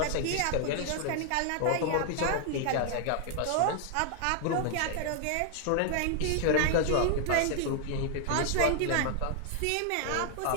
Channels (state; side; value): different; both; correlation 0.00